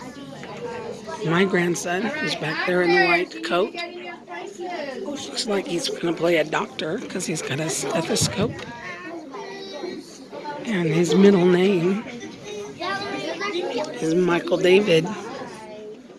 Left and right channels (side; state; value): both; identical; correlation 1.00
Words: my grandson is back there in the white coat. Looks like he's going to play a doctor because he's got a stethoscope. And his middle name is Michael David.